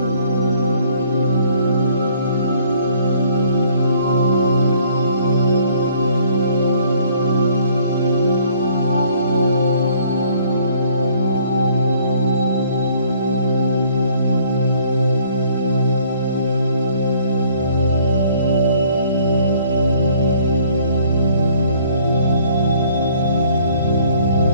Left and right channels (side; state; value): both; inverted; correlation -0.60